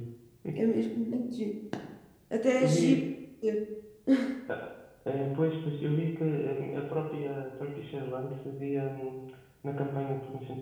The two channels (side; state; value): both; identical; correlation 1.00